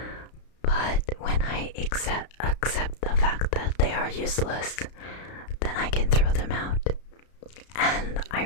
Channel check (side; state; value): right; late; 33 ms